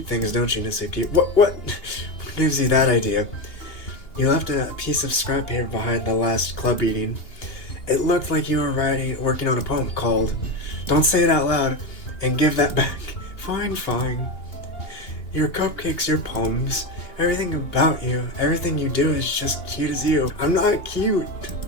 things, don't you, Natsuki? What gives you that idea? You left a piece of scrap paper behind the last club meeting. It looked like you were working on a poem called Don't Say It Out Loud and Give That Back. Fine. Your cupcakes, your poems, everything about you, everything you do is just cute as you. I'm not cute.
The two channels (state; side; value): late; right; 2.8 ms